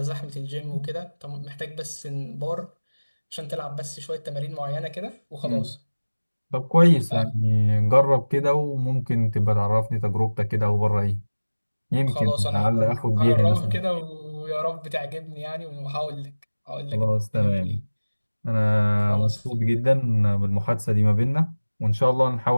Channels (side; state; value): both; inverted; correlation -1.00